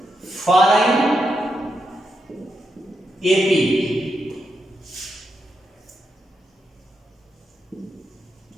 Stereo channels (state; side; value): normal; both; correlation 0.84